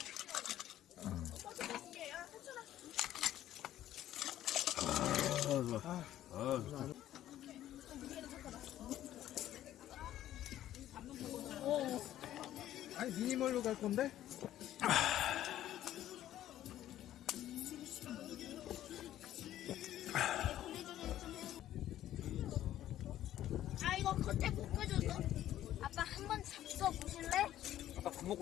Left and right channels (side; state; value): right; quieter; 12.7 dB